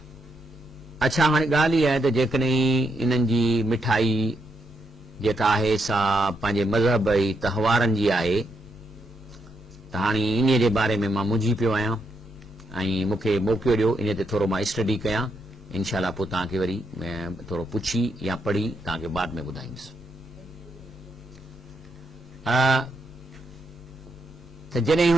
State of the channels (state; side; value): normal; both; correlation 0.79